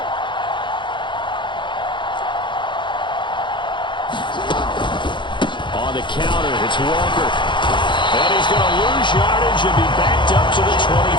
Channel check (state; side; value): late; right; 0.23 ms